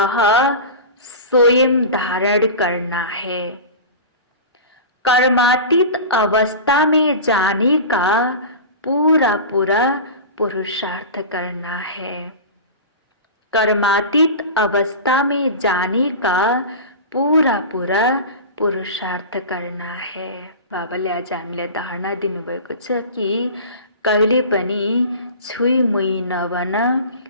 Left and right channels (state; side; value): inverted; both; correlation -0.32